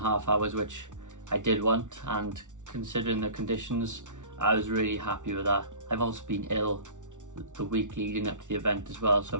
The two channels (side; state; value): left; late; 0.86 ms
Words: hours, which I did want, and considering the conditions, I was really happy with that. I've also been ill the week leading up to the event as well, so